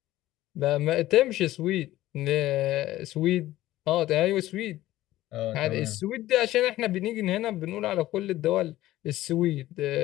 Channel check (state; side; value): quieter; right; 15.5 dB